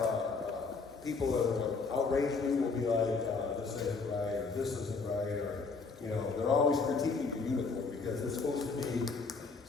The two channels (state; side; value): quieter; right; 4.4 dB